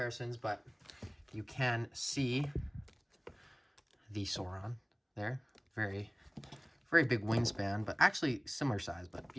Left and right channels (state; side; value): identical; both; correlation 1.00